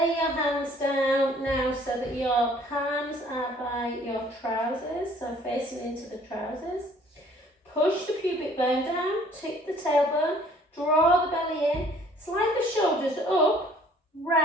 your hands down now so that your palms are by your trousers, so facing into the trousers. Push the pubic bone down, tip the tailbone, draw the belly in, slide the shoulders up,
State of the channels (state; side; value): normal; both; correlation 0.57